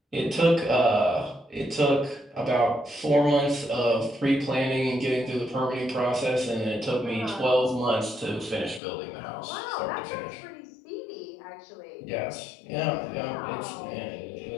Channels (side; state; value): right; drops out; at 8.8 s